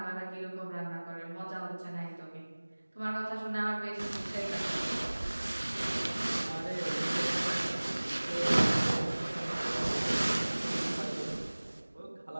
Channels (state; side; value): inverted; both; correlation -1.00